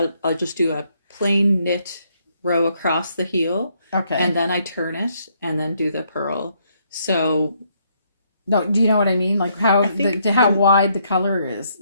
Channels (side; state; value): both; inverted; correlation -0.72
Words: I'll just do a plain knit row across the heel. Okay. And then I turn it and then do the purl. So no, do you know what I mean? Like how wide the color is?